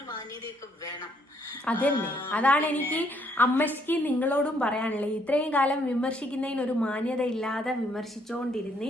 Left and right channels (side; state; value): both; normal; correlation 0.69